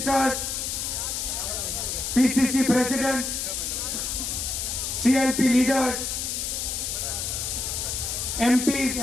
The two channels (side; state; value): left; noise; hiss, 2 dB below the sound